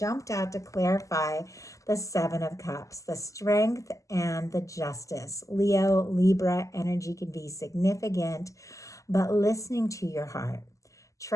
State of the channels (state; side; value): late; right; 0.16 ms